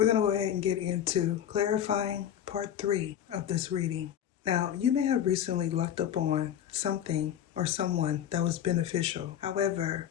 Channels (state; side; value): quieter; right; 10.2 dB